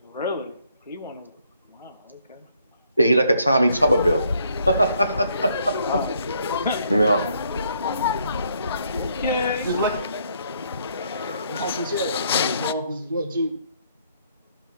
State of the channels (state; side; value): inverted; both; correlation -0.70